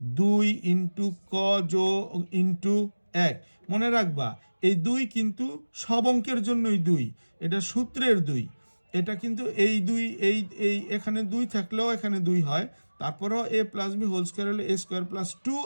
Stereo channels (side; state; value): both; inverted; correlation -1.00